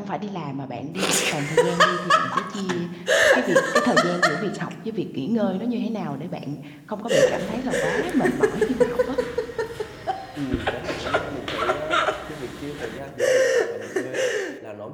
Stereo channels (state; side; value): identical; both; correlation 1.00